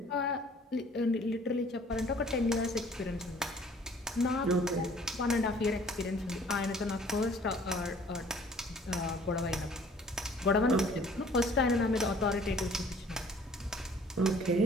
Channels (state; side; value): normal; both; correlation 0.54